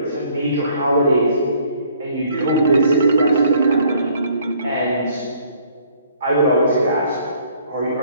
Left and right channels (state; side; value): inverted; both; correlation -0.61